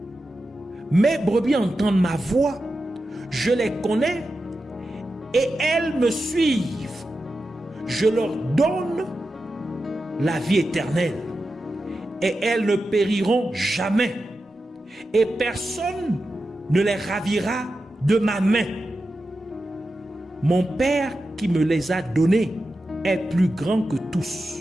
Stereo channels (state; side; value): normal; both; correlation 0.91